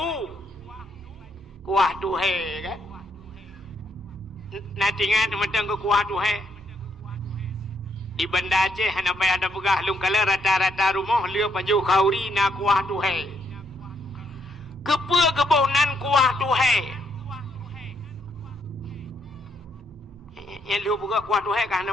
tu he kan nanti ingat mentang ke kuah tu he di Banda Aceh hana payah ada pegah lung kala rata-rata rumah lia pajuh kauri na kuah tu he kepa kebonan kuah tu he yang liu buka kuah tu he kan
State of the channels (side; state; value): both; normal; correlation 0.74